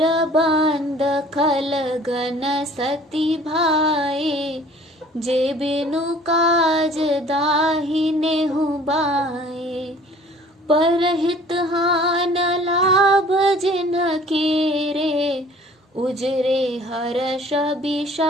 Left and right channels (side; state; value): both; normal; correlation 0.52